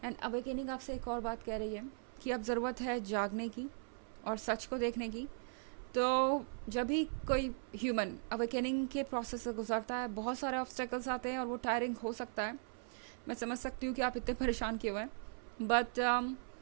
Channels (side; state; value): left; silent; 52 dB below the other